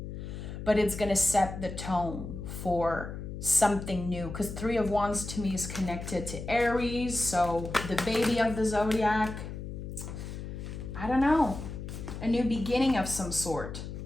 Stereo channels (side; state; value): left; noise; hum, 8 dB below the sound